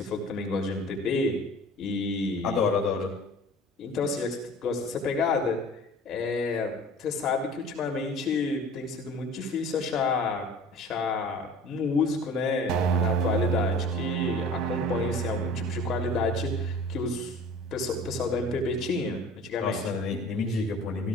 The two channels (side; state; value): both; normal; correlation 0.43